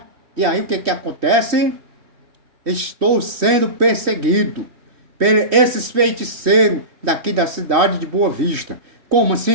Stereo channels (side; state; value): left; late; 3.1 ms